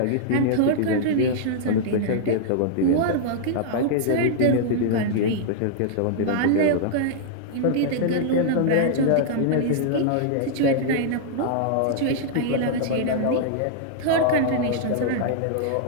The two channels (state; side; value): different; both; correlation -0.01